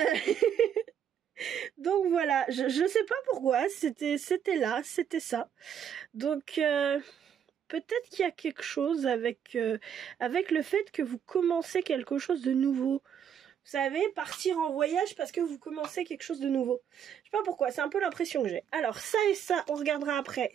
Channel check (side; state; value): left; quieter; 8.6 dB